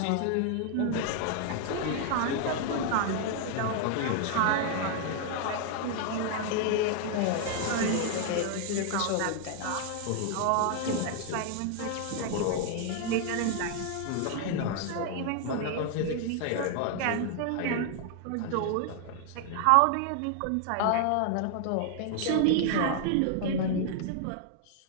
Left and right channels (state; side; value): different; both; correlation 0.00